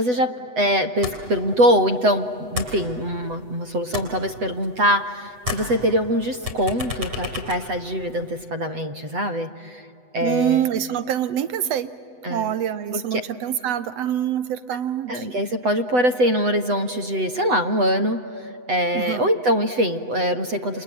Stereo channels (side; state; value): left; late; 8.0 ms